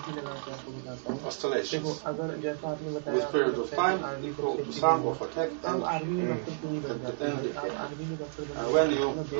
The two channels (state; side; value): silent; left; 57 dB below the other